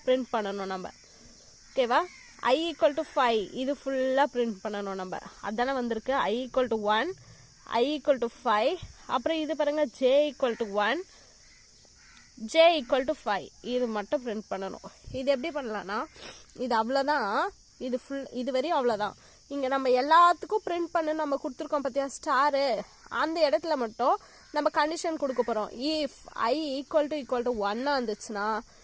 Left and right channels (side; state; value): both; identical; correlation 1.00